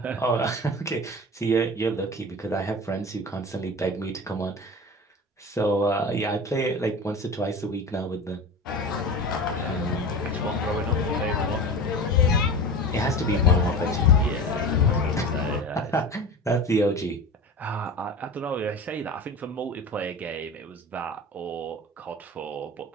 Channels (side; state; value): both; normal; correlation 0.32